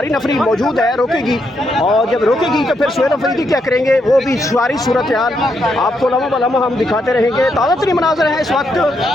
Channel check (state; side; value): normal; both; correlation 0.79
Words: नफरी मौजूद है, रोकेगी। और जब रोकेगी तो फिर सुहेल अफरीदी क्या करेंगे, वो भी सारी सूरत हाल आपको लम्हा ब लम्हा हम दिखाते रहेंगे। ताज़ा तरीन मनाज़िर हैं इस वक्त